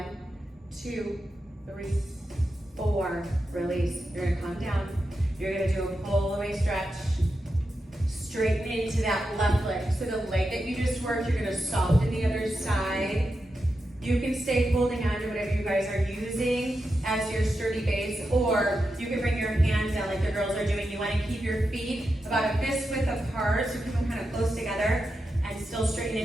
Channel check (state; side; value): normal; both; correlation 0.88